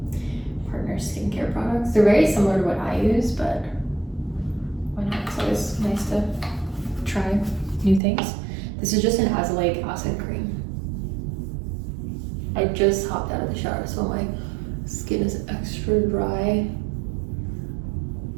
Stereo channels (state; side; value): drops out; left; at 8.0 s